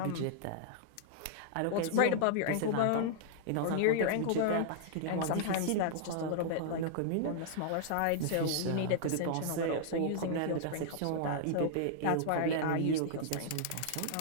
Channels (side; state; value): both; different; correlation -0.01